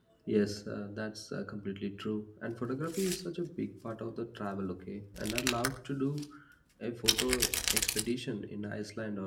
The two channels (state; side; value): identical; both; correlation 1.00